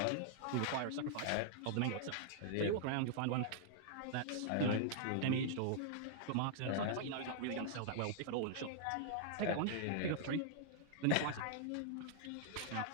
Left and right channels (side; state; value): both; different; correlation -0.01